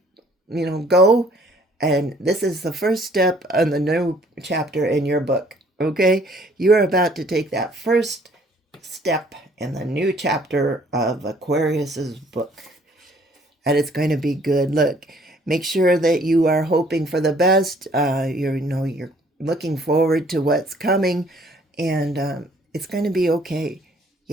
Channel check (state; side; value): normal; both; correlation 0.60